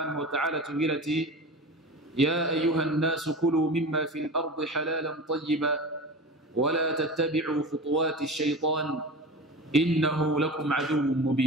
wa ta'ala tubwira ati ya ayuha nnasu kulu mimma fil ardi halalan tayyiba wala tattabi'u khutuwati shaytan innahu lakum aduwwun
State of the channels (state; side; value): normal; both; correlation 0.31